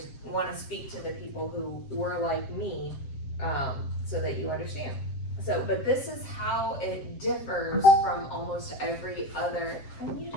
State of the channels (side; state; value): right; late; 7.6 ms